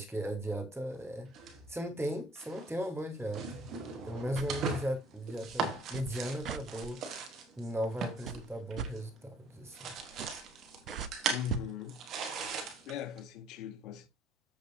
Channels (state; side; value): normal; both; correlation 0.59